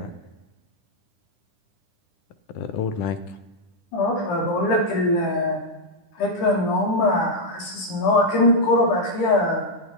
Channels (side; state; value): right; late; 10 ms